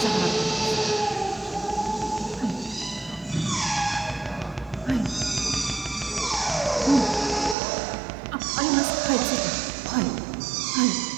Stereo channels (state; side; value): drops out; left; at 7.6 s